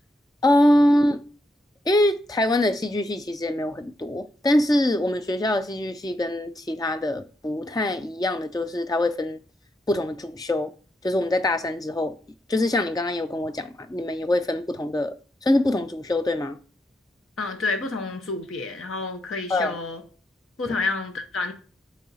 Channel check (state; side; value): normal; both; correlation 0.81